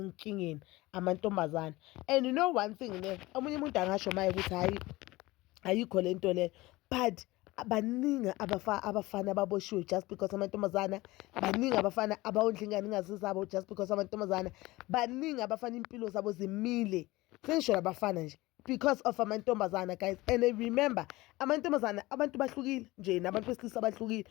amantombazane. And you know one thing ne, omunye umuntu angasho maye ukuthi hayi ayikho lento le, but baningi abafana ababoshiwe just because amantombazana, baningi abafana abawondla ingane ingazizabo just because amantombazana, baningi abafana impilo zabo zimile, sengisho labafana nje because of amantombazana, guys. And remember, amantombazana abantu bahlukile nje nabantu besilisa bahlukile,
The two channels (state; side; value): quieter; right; 19.9 dB